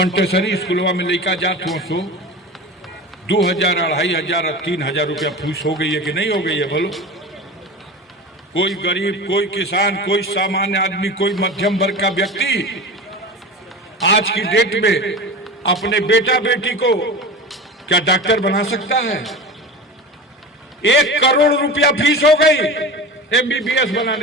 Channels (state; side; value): normal; both; correlation 0.31